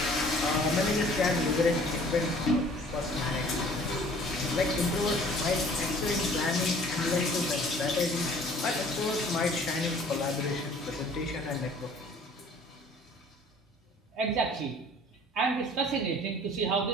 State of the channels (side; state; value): both; normal; correlation 0.52